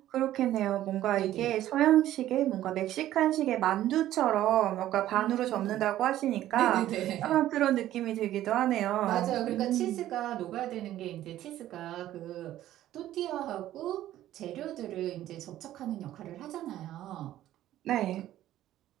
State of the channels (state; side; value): quieter; left; 13.4 dB